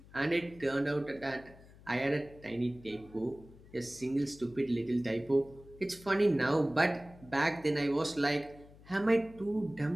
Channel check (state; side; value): noise; left; hum, 22 dB below the sound